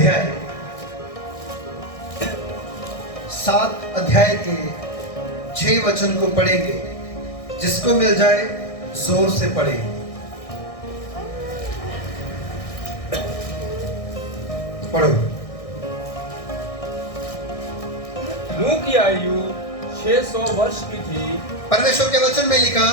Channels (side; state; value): right; late; 1.6 ms